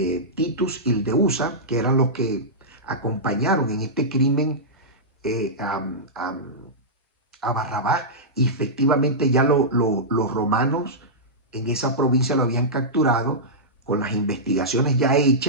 Titus y el de Usa, que eran los que acompañaron en este crimen a Barrabás. Y efectivamente ya los romanos en esa provincia lo habían capturado con las investigaciones ya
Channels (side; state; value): both; normal; correlation -0.13